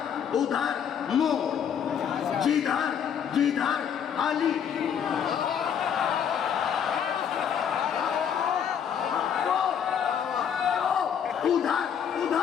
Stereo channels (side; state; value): right; quieter; 8.2 dB